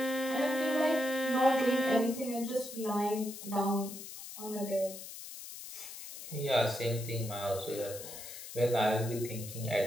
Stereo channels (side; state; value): left; noise; hiss, 11 dB below the sound